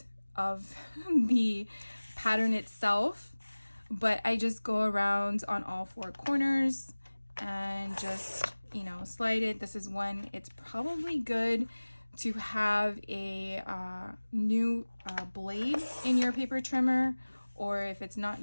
of the pattern itself, but I just go around on all four corners and just, you know, slide it. This is when it's probably good to have a new blade in your paper trimmer, or if it's not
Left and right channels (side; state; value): both; inverted; correlation -1.00